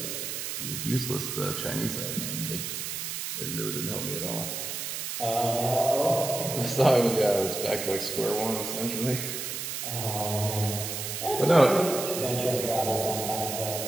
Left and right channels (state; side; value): noise; right; hiss, 4 dB below the sound